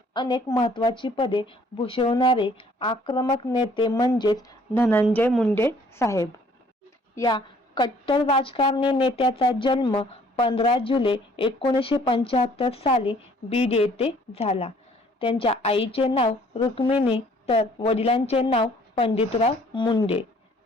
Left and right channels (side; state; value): both; normal; correlation 0.59